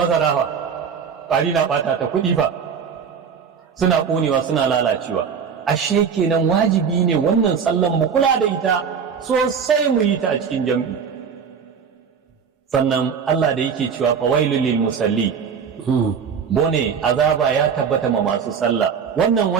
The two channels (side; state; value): left; quieter; 6.7 dB